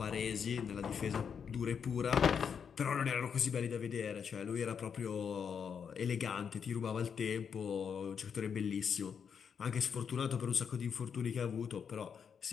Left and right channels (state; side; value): quieter; right; 7.0 dB